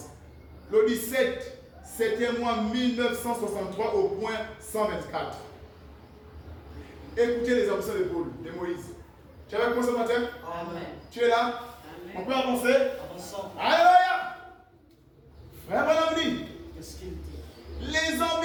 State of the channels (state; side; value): identical; both; correlation 1.00